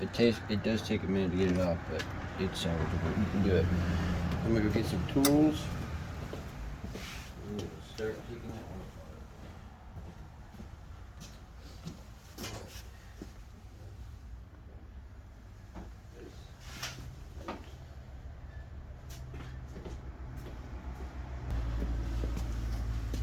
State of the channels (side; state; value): both; identical; correlation 1.00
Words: It does take a minute to get it off, but it's salvageable. You can do it. I'm gonna go get some tools. I'm gonna start taking that one.